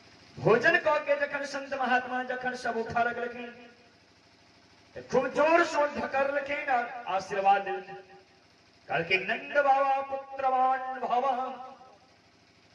भोजन कह के जखन संत महात्मा जखन सब उठा लग लगे, खूब जोर सो ढकर लगे और आशीर्वाद दे। कल के नंद बाबा पुत्रवान भवा,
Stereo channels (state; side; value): identical; both; correlation 1.00